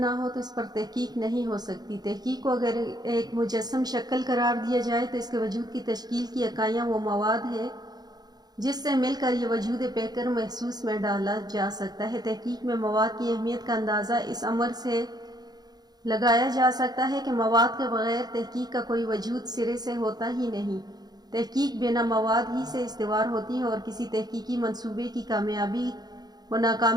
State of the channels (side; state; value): left; late; 0.19 ms